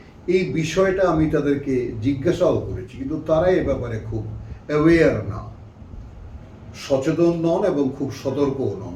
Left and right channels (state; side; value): identical; both; correlation 1.00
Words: এই বিষয়টা আমি তাদেরকে জিজ্ঞাসাও করেছি, কিন্তু তারা এ ব্যাপারে খুব অ্যাওয়্যার না, সচেতন নন এবং খুব সতর্কও নন।